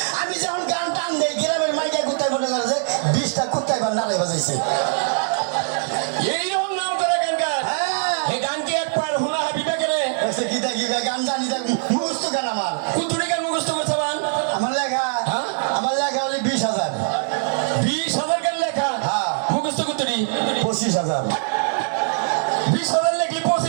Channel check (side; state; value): left; silent; digital silence